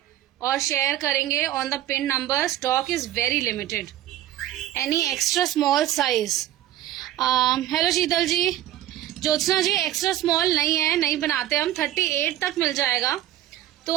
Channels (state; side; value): quieter; left; 13.1 dB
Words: और शेयर करेंगे on the pin number. Stock is very limited. Any extra small size? Hello Sheetal ji. Jyotsna ji extra small नहीं है, नहीं बनाते हम। 38 तक मिल जाएगा। तो